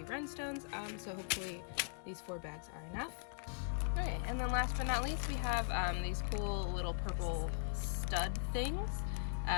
rhinestones, so hopefully these 4 bags are enough. Okay, and then last but not least we have these cool little purple stud things,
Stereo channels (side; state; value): right; silent; 51 dB below the other